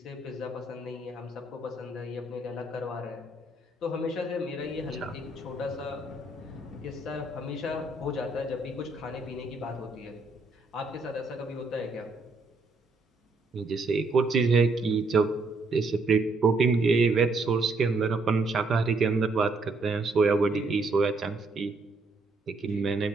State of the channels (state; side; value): quieter; left; 3.1 dB